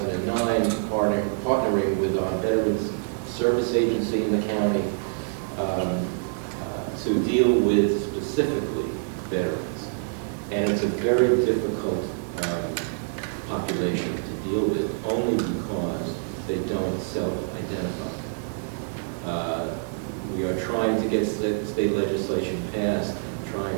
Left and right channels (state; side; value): silent; left; 58 dB below the other